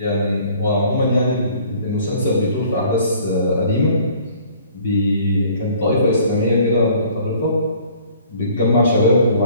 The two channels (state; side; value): inverted; both; correlation -0.54